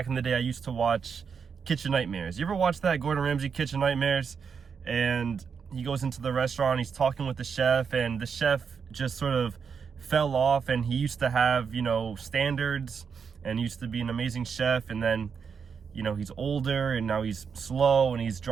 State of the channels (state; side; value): quieter; left; 6.3 dB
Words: in the day, I used to watch Kitchen Nightmares. You ever watch that, Gordon Ramsay Kitchen Nightmares? And he goes into the restaurant, he's talking with the chef, and the chef just sort of fell off, and he used to have, standards, and used to be an amazing chef, and then he's older and now he's slow and he's